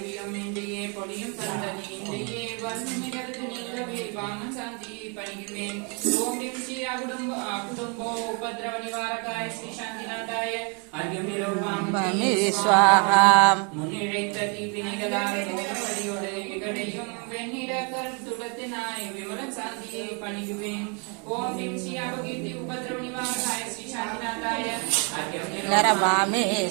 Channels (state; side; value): quieter; left; 35.4 dB